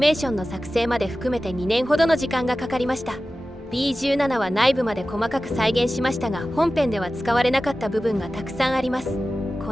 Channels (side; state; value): both; normal; correlation 0.95